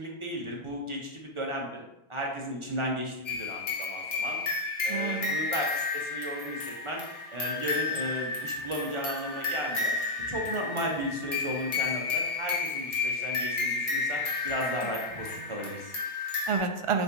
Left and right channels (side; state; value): left; late; 1.3 ms